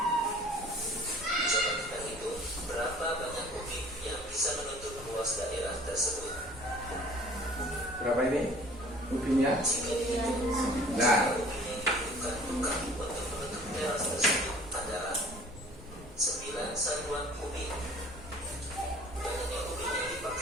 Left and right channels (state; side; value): normal; both; correlation 0.50